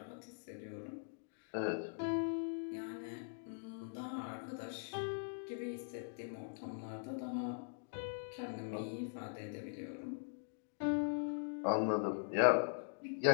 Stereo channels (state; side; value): silent; right; digital silence